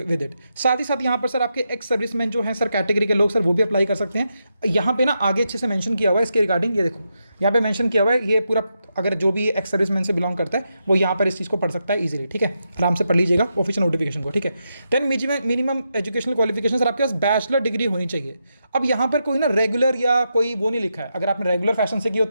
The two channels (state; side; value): inverted; both; correlation -0.84